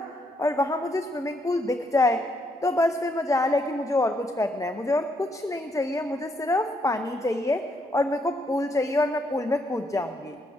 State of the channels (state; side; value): normal; both; correlation 0.75